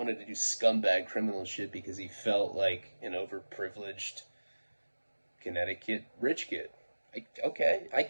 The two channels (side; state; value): both; inverted; correlation -1.00